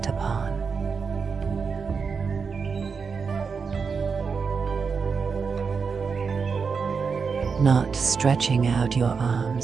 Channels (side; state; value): left; quieter; 5.5 dB